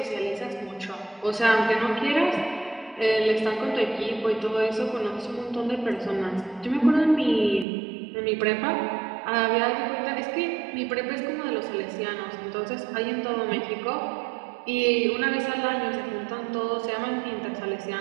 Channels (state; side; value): drops out; left; at 7.7 s